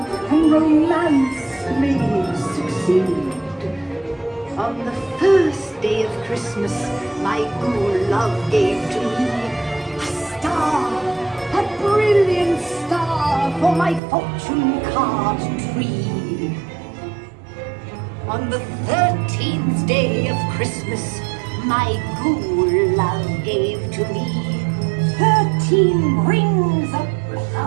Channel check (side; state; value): left; drops out; at 14.0 s